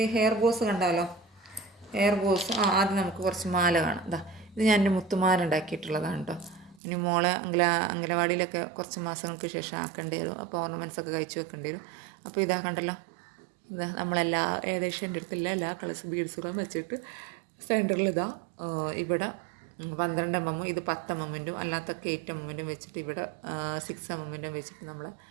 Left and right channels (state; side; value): drops out; left; at 6.8 s